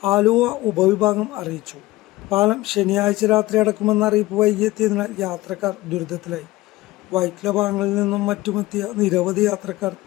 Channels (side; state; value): right; quieter; 18.4 dB